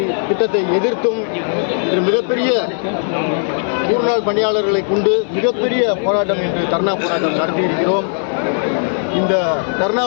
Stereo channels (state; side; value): silent; right; 63 dB below the other